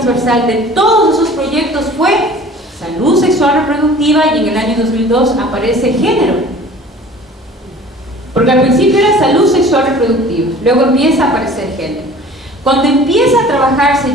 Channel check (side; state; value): both; normal; correlation 0.46